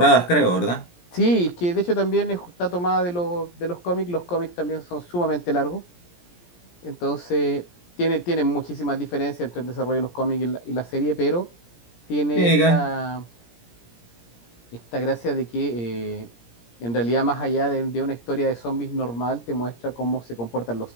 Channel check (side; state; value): right; late; 17 ms